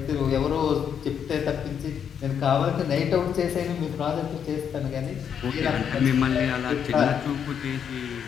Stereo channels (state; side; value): quieter; right; 8.0 dB